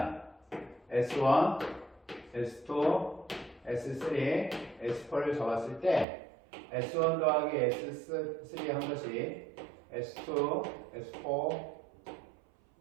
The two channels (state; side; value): drops out; left; at 6.1 s